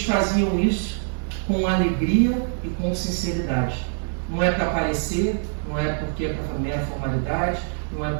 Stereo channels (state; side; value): silent; left; 63 dB below the other